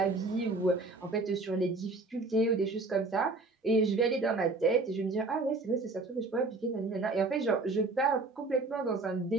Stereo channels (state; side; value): quieter; left; 3.4 dB